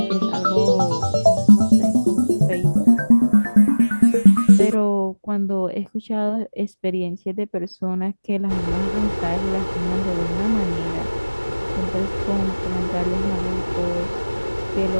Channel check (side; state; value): both; inverted; correlation -1.00